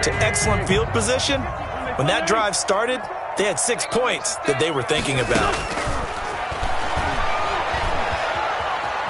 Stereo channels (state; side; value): identical; both; correlation 1.00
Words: to excellent field position. When that drive started, they had 6 points that they were thinking about.